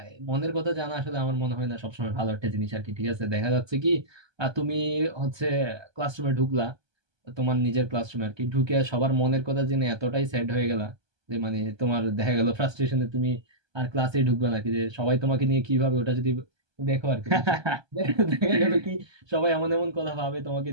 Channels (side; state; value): left; late; 1.3 ms